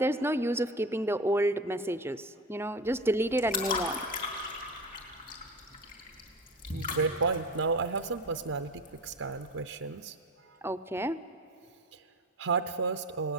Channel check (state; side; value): normal; both; correlation 0.29